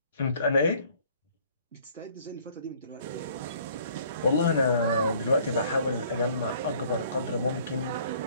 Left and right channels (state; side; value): inverted; both; correlation -0.58